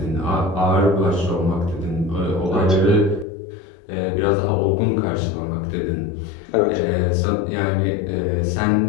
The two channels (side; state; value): right; drops out; at 3.2 s